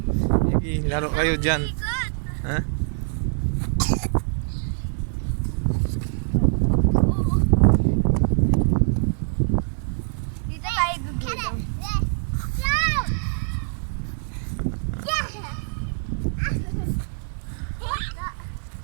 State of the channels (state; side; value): silent; left; digital silence